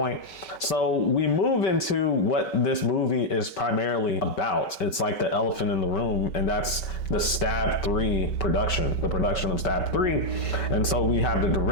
So we move into what this movie is primarily about. It's like the elephant in the room, and that's the Stab 3 production, the production of Stab 3. And so we have the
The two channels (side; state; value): right; late; 5.2 ms